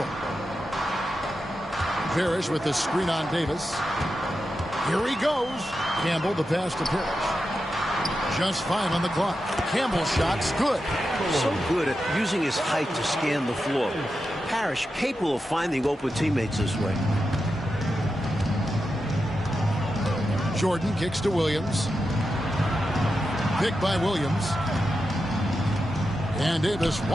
Parrish with the screen on Davis. Here he goes. Campbell, the pass to Parrish. Just 5 on the clock. Campbell's shot's good. So good at using his height to scan the floor. Parrish capable of finding open teammates this way. Jordan kicks to Williams. Pick by Williams. And Davis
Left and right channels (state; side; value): normal; both; correlation 0.89